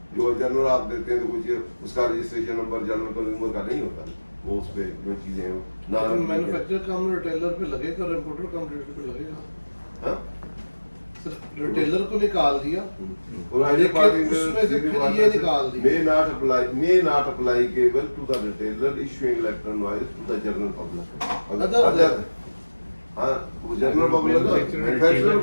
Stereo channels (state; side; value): inverted; both; correlation -1.00